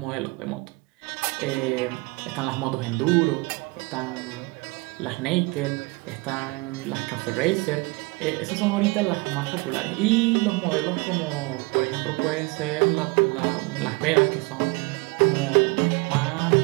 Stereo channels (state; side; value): quieter; left; 26.2 dB